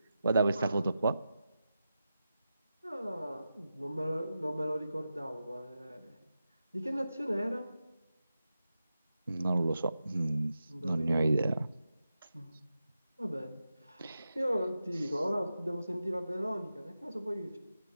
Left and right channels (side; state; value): both; inverted; correlation -0.90